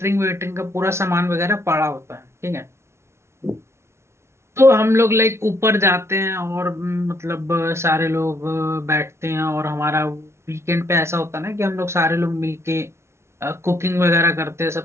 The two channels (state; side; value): late; left; 0.13 ms